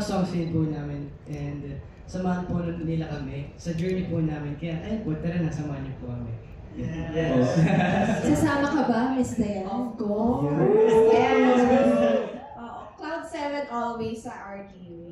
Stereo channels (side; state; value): both; identical; correlation 1.00